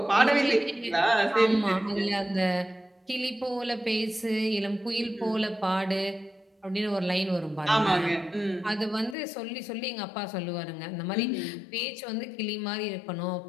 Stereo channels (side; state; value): right; drops out; at 9.2 s